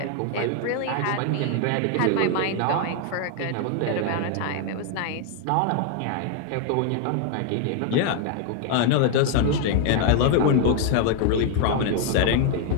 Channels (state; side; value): different; both; correlation 0.00